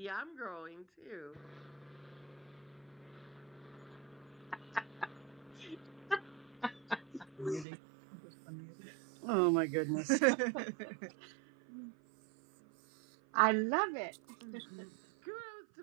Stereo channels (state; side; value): drops out; left; at 7.7 s